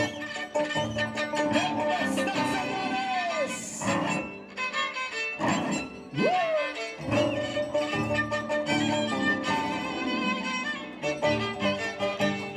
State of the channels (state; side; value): identical; both; correlation 1.00